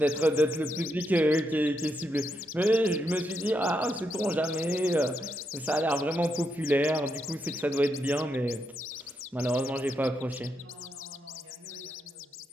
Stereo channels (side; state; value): both; normal; correlation 0.81